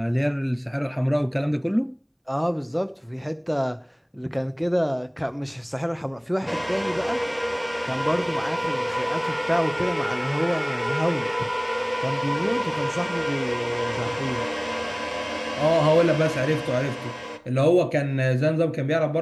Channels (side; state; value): both; identical; correlation 1.00